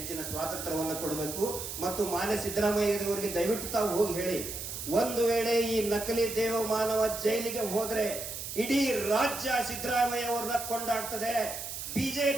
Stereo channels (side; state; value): right; noise; hiss, 7 dB below the sound